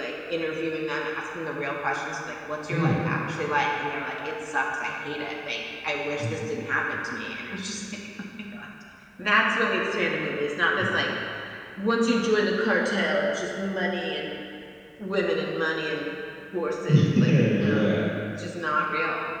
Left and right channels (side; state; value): both; identical; correlation 1.00